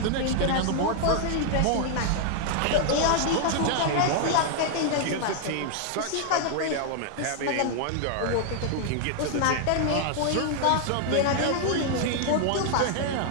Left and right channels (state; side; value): different; both; correlation 0.00